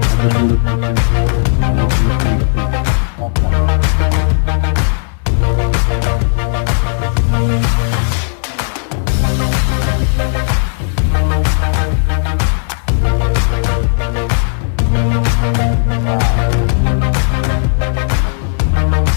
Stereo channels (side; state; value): right; silent; digital silence